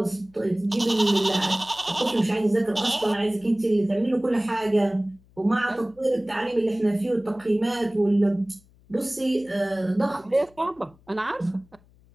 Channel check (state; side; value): noise; left; hum, 29 dB below the sound